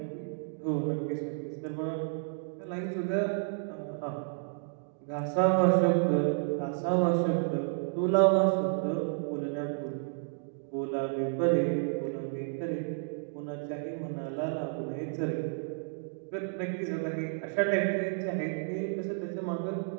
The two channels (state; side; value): silent; left; digital silence